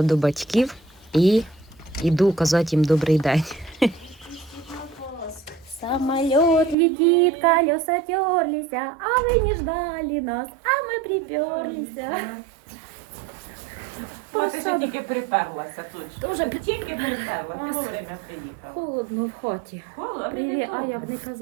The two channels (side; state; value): left; drops out; at 6.8 s